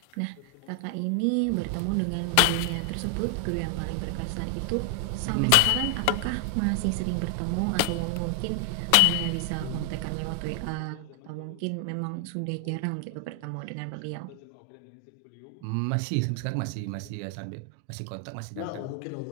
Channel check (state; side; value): different; both; correlation 0.00